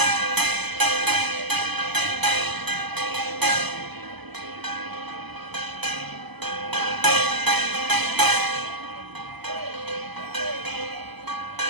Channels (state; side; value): late; left; 0.99 ms